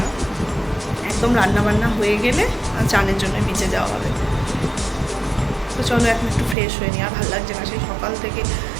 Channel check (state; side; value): drops out; left; at 6.6 s